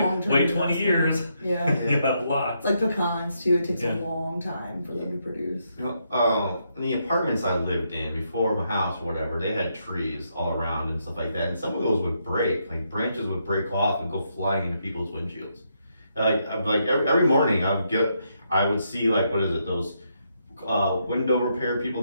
wait 20 years. Yeah. You have lots. Like pecans too. It takes a long time for them to produce. In the apartments I lived in before my house or whatever, they had trees all around and stuff like that, and some of those would break. Like branches would break off and go flying into people's windshields. Like every morning I would see like those window repair people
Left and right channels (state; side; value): inverted; both; correlation -0.78